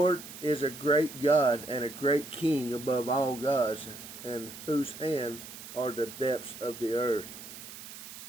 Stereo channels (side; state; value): right; noise; hiss, 13 dB below the sound